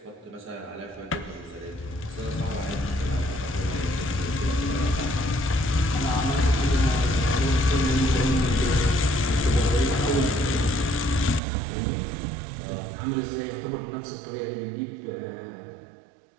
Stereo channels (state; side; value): drops out; left; at 11.4 s